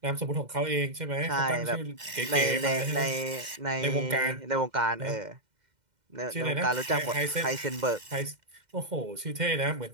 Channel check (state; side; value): late; left; 2.1 ms